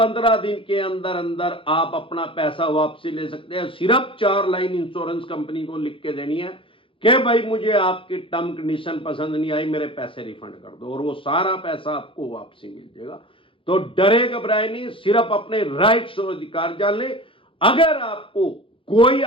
दिन के अंदर अंदर आप अपना पैसा वापसी ले सकते हैं। सिर्फ 4 लाइन इंश्योरेंस कंपनी को लिख के देनी है कि भाई मुझे आपकी टर्म कंडीशन पसंद नहीं आई, मेरे पैसे रिफंड कर दो, और वो सारा पैसा आपको वापसी मिल जाएगा। तो डरे घबराए नहीं, सिर्फ अपने राइट्स और अधिकार जान ले। अगर आपको कोई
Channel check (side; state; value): right; late; 0.25 ms